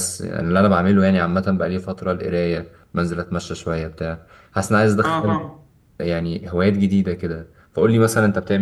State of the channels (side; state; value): both; identical; correlation 1.00